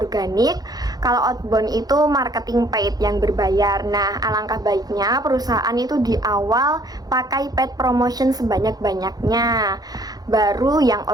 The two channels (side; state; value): left; late; 0.19 ms